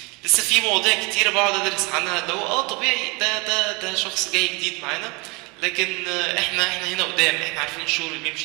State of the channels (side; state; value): left; quieter; 28.2 dB